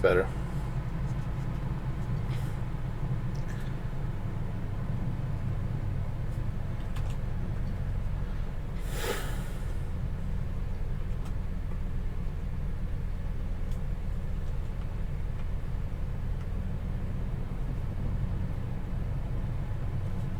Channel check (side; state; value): both; identical; correlation 1.00